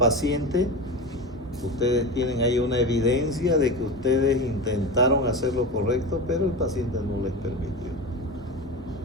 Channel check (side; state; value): both; normal; correlation 0.25